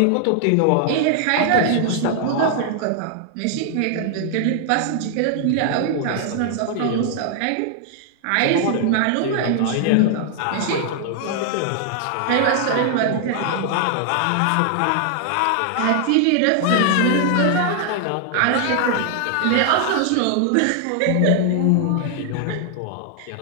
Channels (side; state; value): both; different; correlation 0.00